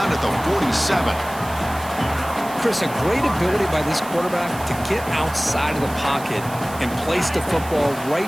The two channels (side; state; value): right; noise; hiss, 16 dB below the sound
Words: at the 47. Chris, a great ability by this quarterback to get outside of the pocket and place the football right